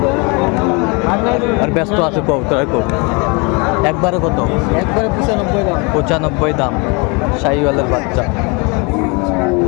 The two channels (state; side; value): quieter; right; 30.2 dB